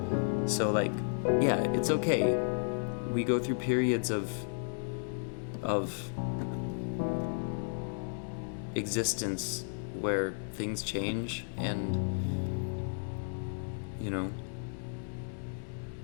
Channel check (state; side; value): silent; right; digital silence